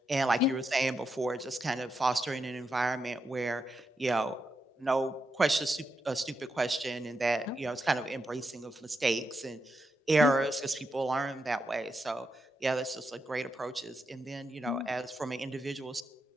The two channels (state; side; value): normal; both; correlation 0.84